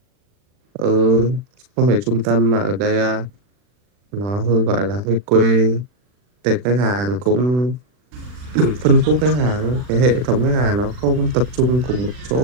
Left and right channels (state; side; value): late; left; 40 ms